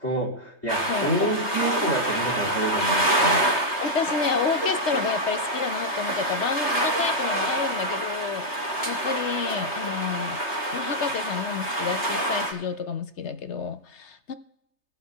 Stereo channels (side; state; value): right; late; 3.3 ms